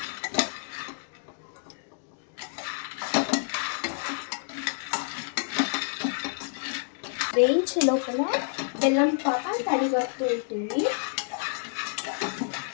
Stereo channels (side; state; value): right; silent; digital silence